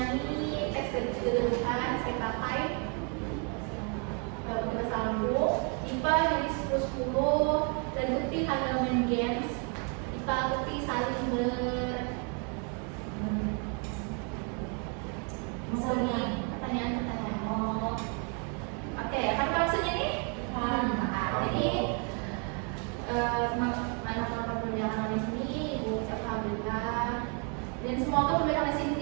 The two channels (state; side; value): quieter; left; 37.7 dB